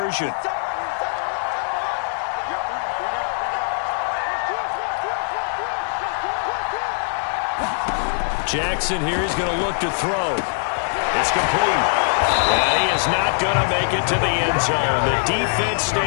Jackson here is going to look to throw. It's complete. And he is not going to make it to the end zone. The defense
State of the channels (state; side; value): silent; right; digital silence